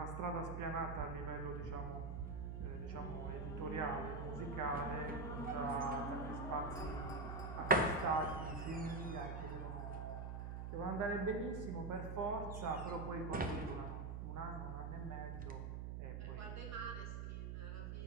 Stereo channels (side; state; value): right; noise; hum, 4 dB below the sound